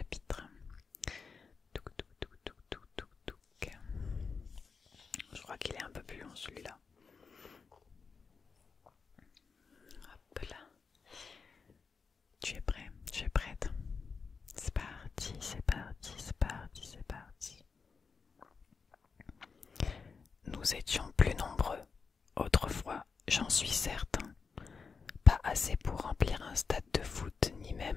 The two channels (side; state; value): right; quieter; 5.2 dB